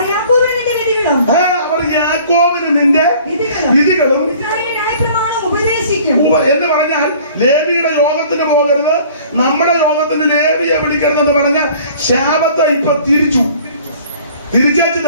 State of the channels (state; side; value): inverted; both; correlation -0.51